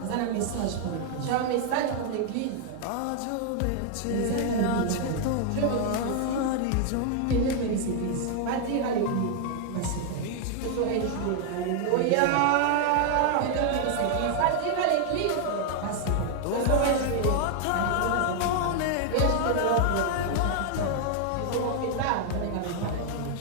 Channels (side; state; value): both; different; correlation 0.00